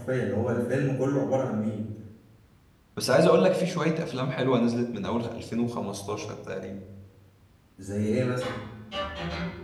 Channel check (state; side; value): identical; both; correlation 1.00